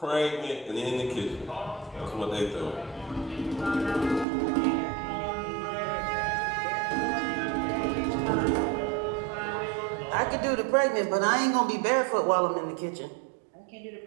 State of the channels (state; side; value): drops out; left; at 4.2 s